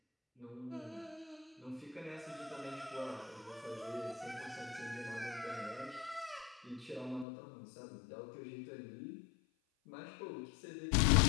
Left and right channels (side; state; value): right; drops out; at 7.2 s